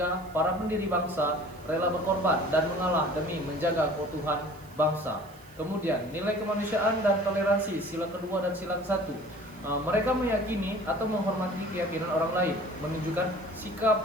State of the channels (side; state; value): right; noise; hiss, 26 dB below the sound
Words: para pendiri bangsa rela berkorban dan mengalah demi menjaga keutuhan bangsa. Kemudian nilai kemanusiaan dan toleransi, sila kedua dan sila ke-1. Mereka meyakini atau menghormati keyakinan orang lain, menunjukkan